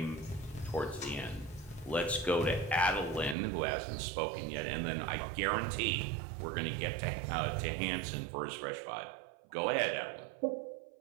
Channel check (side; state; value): left; drops out; at 3.4 s